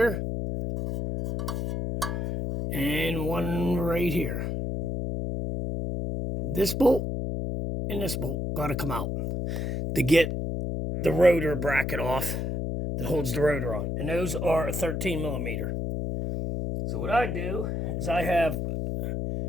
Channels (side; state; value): left; noise; hum, 2 dB below the sound